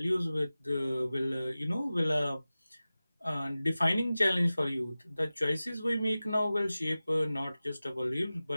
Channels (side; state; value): both; inverted; correlation -0.96